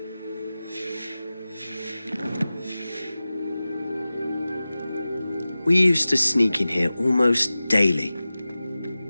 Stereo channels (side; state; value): both; inverted; correlation -0.96